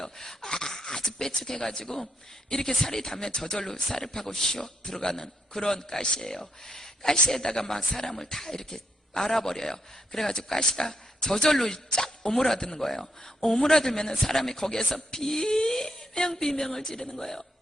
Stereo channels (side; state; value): both; normal; correlation 0.79